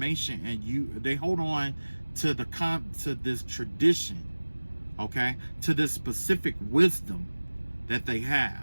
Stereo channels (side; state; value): both; inverted; correlation -1.00